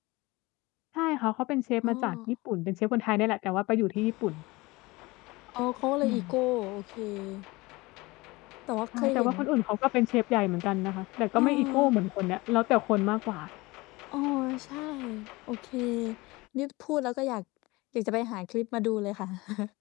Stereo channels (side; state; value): right; quieter; 22.4 dB